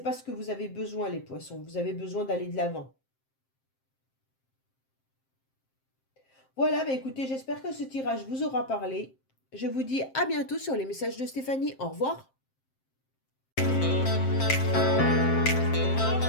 pas ce que vous avez besoin, les poissons. Vous avez besoin d'aller de l'avant. Voilà, bah écoutez, j'espère que ce tirage vous aura parlé. Je vous dis à bientôt sur les messages de Stéphanie. Au revoir.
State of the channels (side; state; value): right; late; 7.6 ms